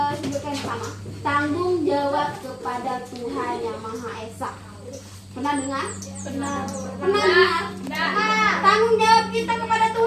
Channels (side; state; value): both; identical; correlation 1.00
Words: sama. Tanggung jawab kepada Tuhan Yang Maha Esa. Pernah dengar? Pernah. Pernah dengar? Tanggung jawab kita kepada